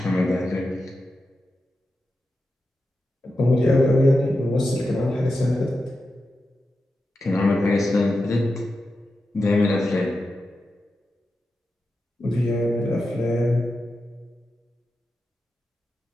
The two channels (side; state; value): both; normal; correlation 0.90